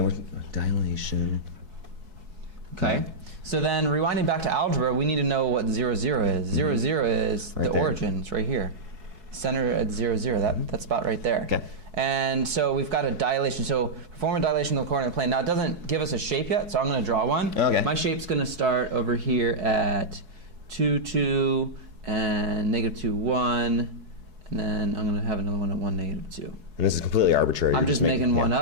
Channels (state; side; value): late; left; 4.7 ms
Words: dilation. Okay. So then, rewinding back to algebra, we need to know what 0, 0 is. 0, 0 is the origin. It's right here. Center at 0, 0. That spot right there. Okay. And so we've got a dilation. So perform a dilation of the coordinate plane. Now it doesn't give us a shape yet, so I'm going to draw one. Okay. My shape's going to start over here at 2, 2, and negative 2, 1, and then I'm going to have another one at 1, negative 2. And this is completely arbitrary. I'm just making one